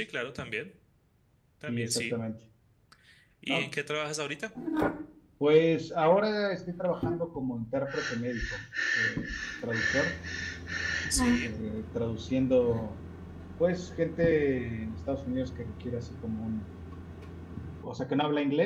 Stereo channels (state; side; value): identical; both; correlation 1.00